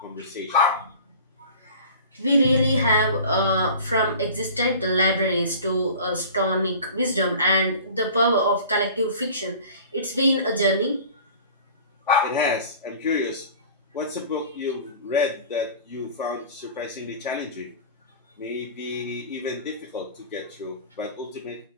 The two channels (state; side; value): inverted; both; correlation -0.42